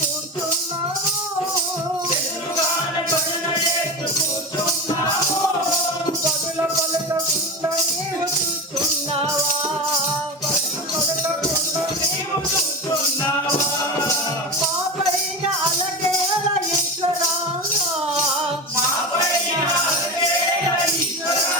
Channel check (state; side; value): normal; both; correlation 0.23